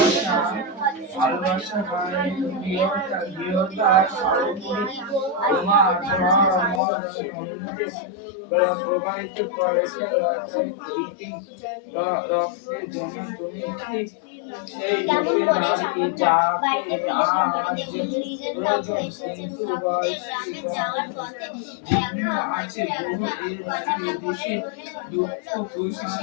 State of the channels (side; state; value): right; drops out; at 6.8 s